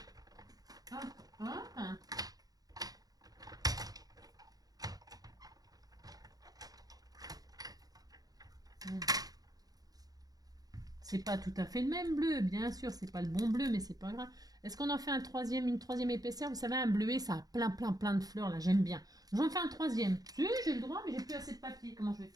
Hop, hop. C'est pas tout à fait le même bleu, bien sûr, c'est pas le bon bleu, mais c'est pas grave. Est-ce qu'on en fait une troisième épaisseur? Vous savez, un bleuet, ça a plein de fleurs, là, j'aime bien. J'en fais un troisième. Si, j'ai le droit, mais j'ai plus assez de papier. Comment je vais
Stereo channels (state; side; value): late; left; 0.18 ms